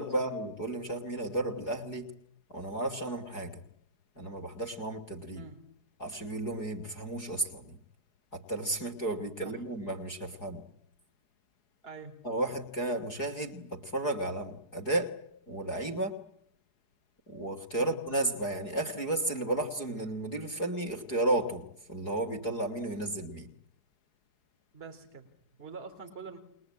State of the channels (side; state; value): right; late; 4.8 ms